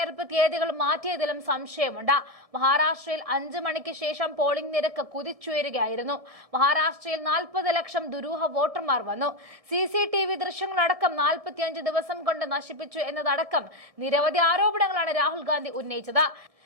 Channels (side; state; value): left; late; 1.7 ms